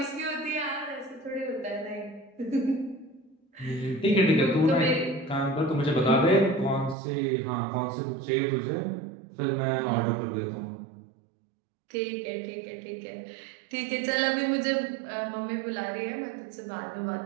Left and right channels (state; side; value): drops out; left; at 7.0 s